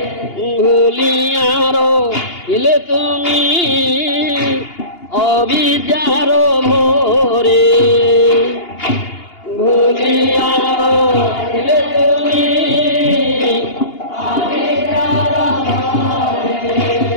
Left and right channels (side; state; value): right; late; 2.8 ms